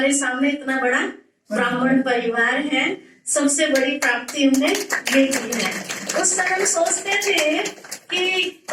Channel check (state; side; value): identical; both; correlation 1.00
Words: सामने इतना बड़ा ब्राह्मण परिवार है। सबसे बड़ी प्राप्ति हमने ये की है। उस समय हम सोचते थे कि